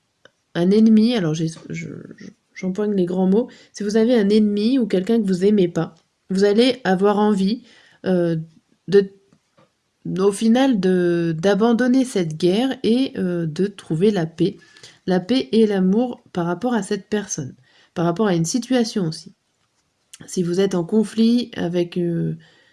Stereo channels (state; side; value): identical; both; correlation 1.00